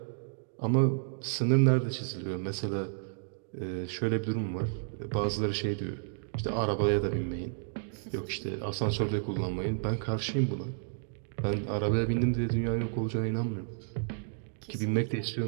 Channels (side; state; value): left; silent; digital silence